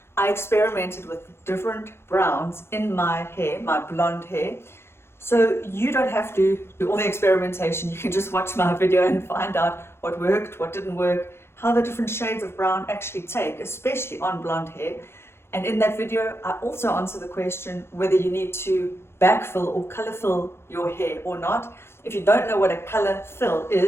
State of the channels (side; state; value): right; late; 0.12 ms